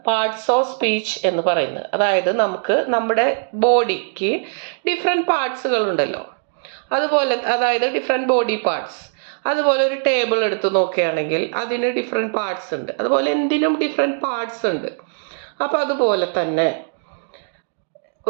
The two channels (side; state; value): left; silent; digital silence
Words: parts of speech എന്ന് പറയുന്നത്. അതായത് നമുക്ക് നമ്മുടെ ബോഡിക്ക് ഡിഫറെൻറ്റ് പാർട്സുകളുണ്ടല്ലോ, അതുപോലെ അതായത് ഡിഫറെൻറ്റ് ബോഡി പാർട്സ്. അതുപോലെ ഒരു ടേബിൾ എടുത്ത് നോക്കുകയാണെങ്കിൽ അതിന് ഡിഫറെൻറ്റ് പാർട്സ് ഉണ്ട്. അതുപോലെ എന്തിനും ഡിഫറെൻറ്റ് പാർട്സ് ഉണ്ട്. അപ്പോൾ അതുപോലെ തന്നെ